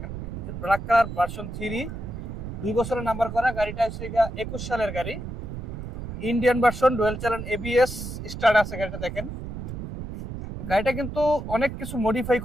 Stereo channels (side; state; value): right; noise; rumble, 8 dB below the sound